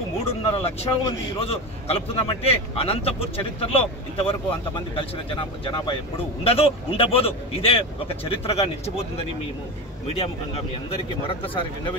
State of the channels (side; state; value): both; normal; correlation 0.23